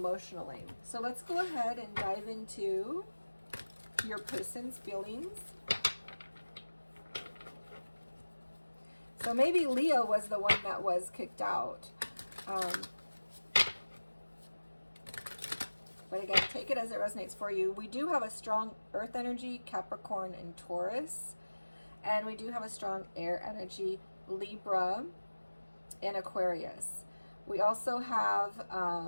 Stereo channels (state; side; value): inverted; both; correlation -1.00